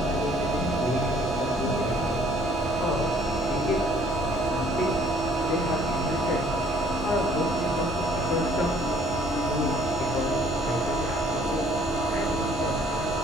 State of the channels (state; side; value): normal; both; correlation 0.59